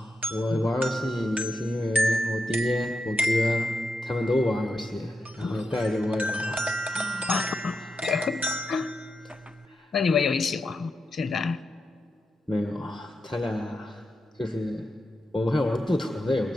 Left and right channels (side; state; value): both; normal; correlation 0.86